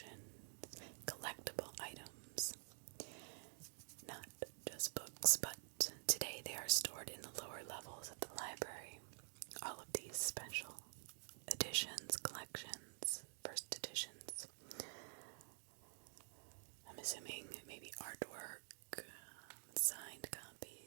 collectible items. Not just books, but today they are stored in the lower levels of the library. All of these special editions, collections, first editions. I'm assuming maybe artwork, signed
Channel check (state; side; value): silent; left; digital silence